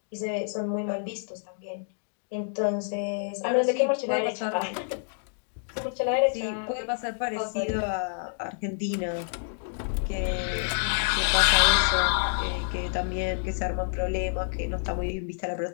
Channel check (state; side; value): silent; right; digital silence